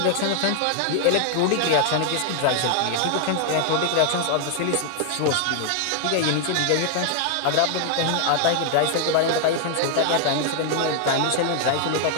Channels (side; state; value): both; different; correlation 0.00